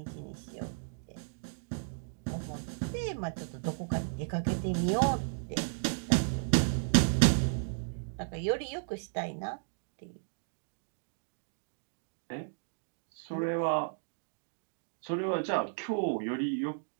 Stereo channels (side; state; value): left; silent; digital silence